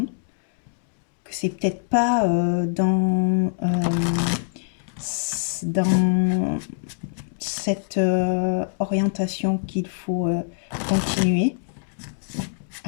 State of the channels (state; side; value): silent; right; digital silence